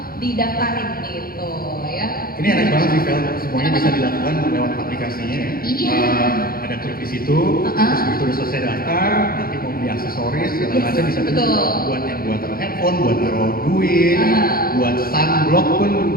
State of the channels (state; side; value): late; right; 0.43 ms